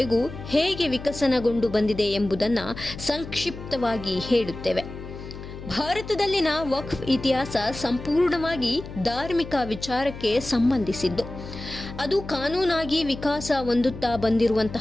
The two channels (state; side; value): noise; left; hum, 12 dB below the sound